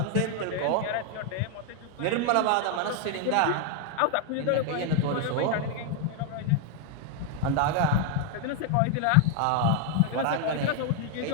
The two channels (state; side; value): different; both; correlation 0.01